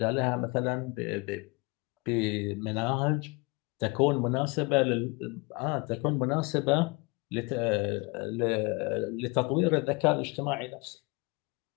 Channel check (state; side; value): quieter; right; 27.5 dB